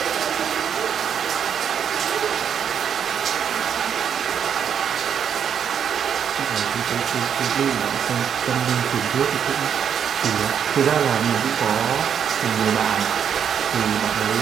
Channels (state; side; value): quieter; left; 8.1 dB